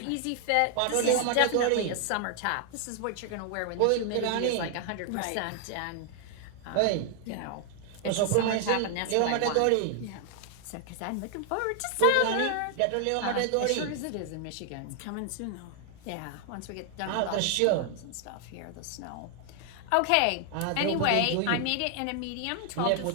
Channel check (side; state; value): both; different; correlation 0.00